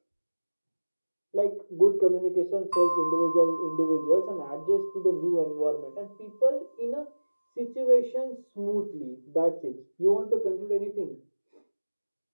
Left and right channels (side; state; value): both; inverted; correlation -1.00